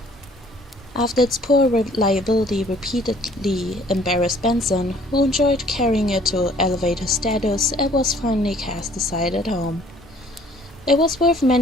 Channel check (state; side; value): normal; both; correlation 0.57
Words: After its poor reliability repeatedly embarrassed Benson, who enjoyed carrying it to elevate his status, it was finally cast aside at home. It was worth